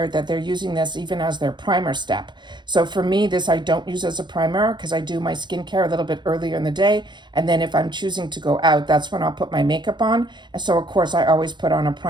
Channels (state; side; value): late; left; 0.22 ms